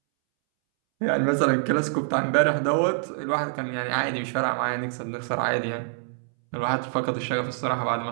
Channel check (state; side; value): silent; left; 61 dB below the other